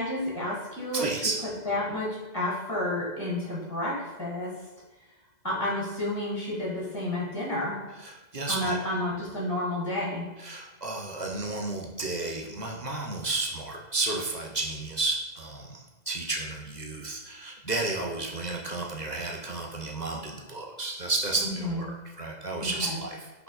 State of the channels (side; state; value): right; late; 2.0 ms